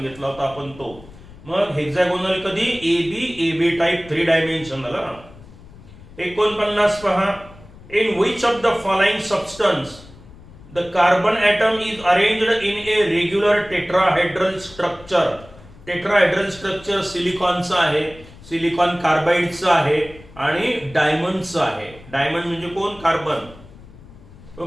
होता आपण तो. मग हेक्सागोनल कधी, एबी टाइप 3 डायमेन्शनल. 49 पहा. In which of the following substance the carbon atom is arranged in a regular tetrahedral structure. Tetrahedral structure सिलिकॉनचं आहे, सिलिकॉन कार्बाइडचं आहे आणि डायमंडचं आहे. डायमंड म्हणजे कोण, कार्बन.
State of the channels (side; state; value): left; noise; rumble, 20 dB below the sound